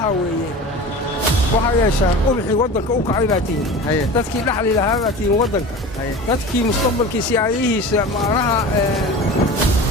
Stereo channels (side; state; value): both; normal; correlation 0.35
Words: waxa yeeshaan ubixi wadanka u kacay baatiin dadkii dhaxli lahaa baatiin wadanka dadkii mustaqbalkiisa ayahiisa maanaha